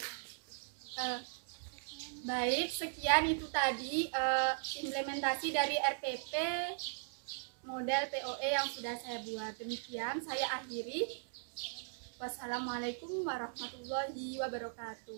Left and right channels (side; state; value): left; silent; digital silence